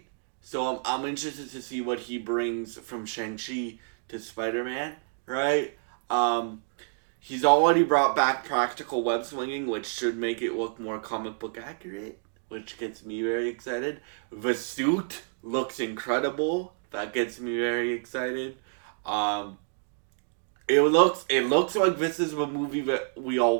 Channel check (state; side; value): silent; left; digital silence